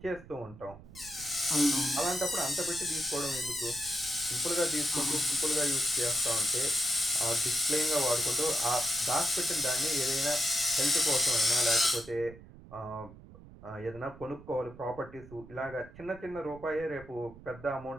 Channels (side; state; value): right; noise; rumble, 18 dB below the sound